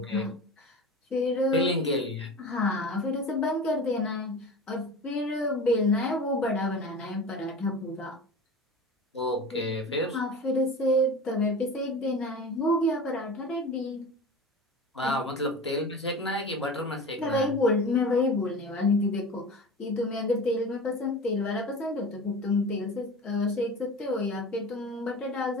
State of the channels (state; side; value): normal; both; correlation 0.33